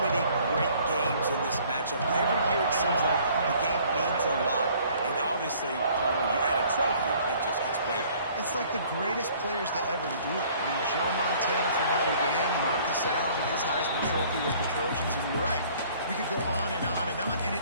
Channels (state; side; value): inverted; both; correlation -0.56